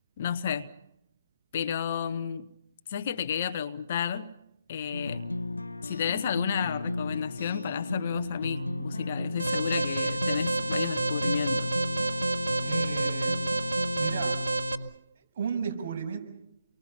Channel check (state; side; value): inverted; both; correlation -0.82